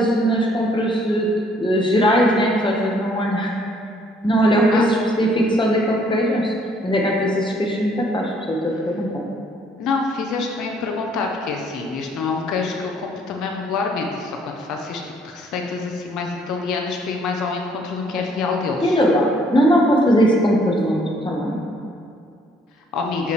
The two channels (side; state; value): both; normal; correlation 0.64